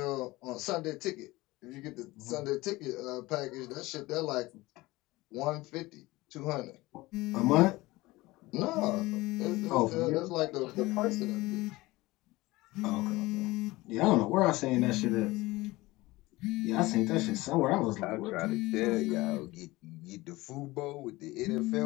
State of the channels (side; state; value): right; quieter; 20.1 dB